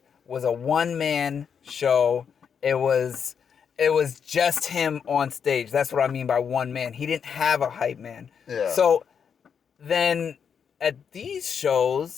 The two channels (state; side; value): quieter; right; 7.1 dB